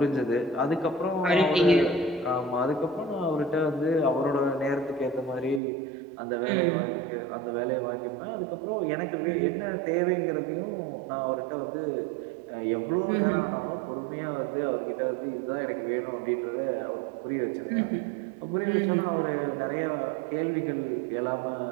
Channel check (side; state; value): left; drops out; at 5.6 s